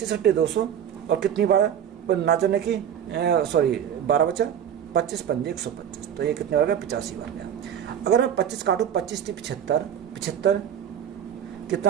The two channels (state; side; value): quieter; left; 9.2 dB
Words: अट्ठे 200 और कितनी बार ना जाने की 12 बचा, 25 पंजे 125। तो ये कितने बार गया, 85 बार गया। अगर मैं 25 काटूँ, 25 थी 75, 75